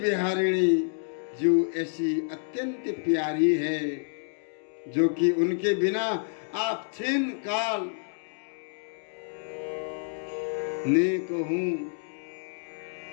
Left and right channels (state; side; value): silent; right; digital silence